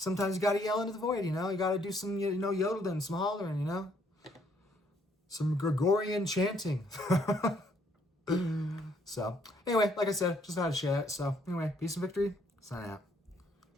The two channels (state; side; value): normal; both; correlation 0.68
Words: you got to yell into the void, you got to do some, yodeling, some hollering, some Gregorian chanting. So anyway, like I said, just had to share that. So anyway, peace and victory. Sign out.